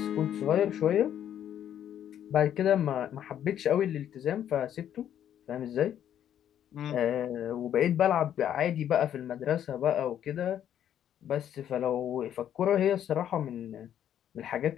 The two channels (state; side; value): quieter; right; 10.2 dB